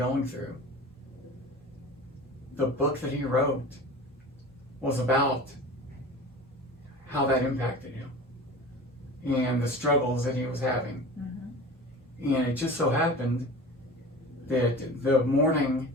through. The book that he wrote was about how that impacted him and the struggles that he was having. Mm-hmm. And it just so happened that the morning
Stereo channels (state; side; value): normal; both; correlation 0.36